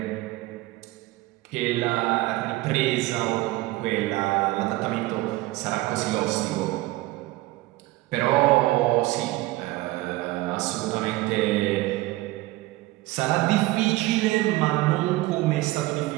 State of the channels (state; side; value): quieter; left; 18.8 dB